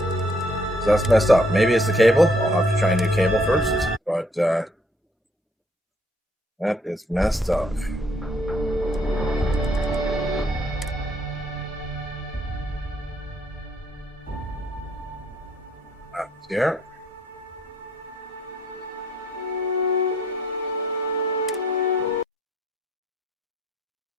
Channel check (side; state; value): both; normal; correlation 0.66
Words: that's messed up. Maybe it's the cable. I'll have to try a new cable first. But that is messed up. That's here.